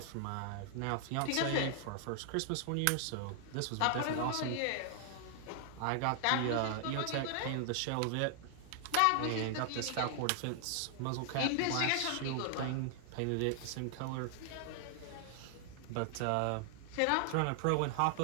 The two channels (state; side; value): different; both; correlation 0.00